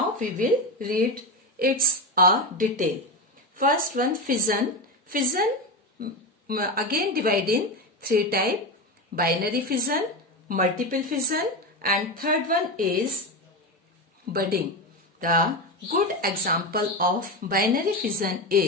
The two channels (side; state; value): both; normal; correlation 0.17